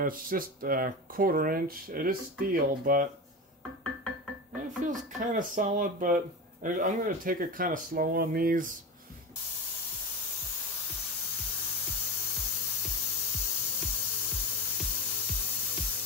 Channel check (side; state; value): both; normal; correlation 0.23